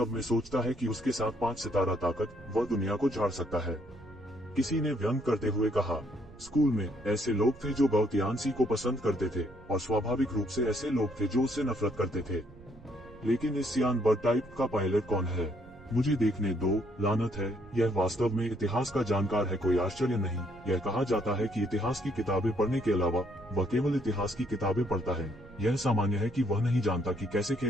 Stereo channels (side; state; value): right; noise; rumble, 22 dB below the sound